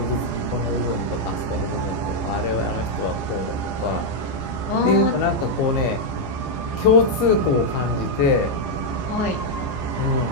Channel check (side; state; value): right; late; 15 ms